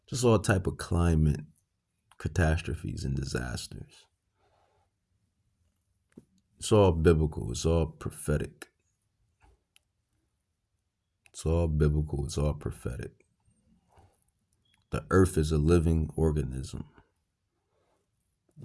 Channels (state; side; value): identical; both; correlation 1.00